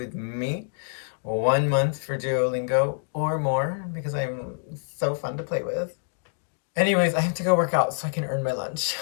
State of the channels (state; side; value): silent; right; digital silence